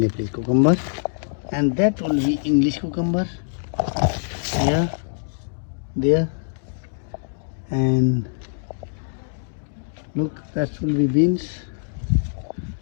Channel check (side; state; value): right; silent; digital silence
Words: cucumber, and that will be English cucumber. Here, there, and look, that will be beans.